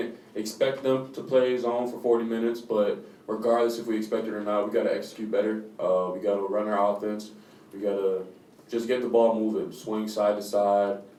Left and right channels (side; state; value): both; identical; correlation 1.00